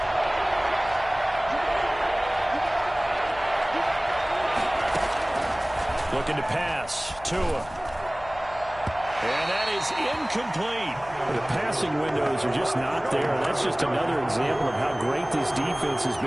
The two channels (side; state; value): left; noise; hum, 19 dB below the sound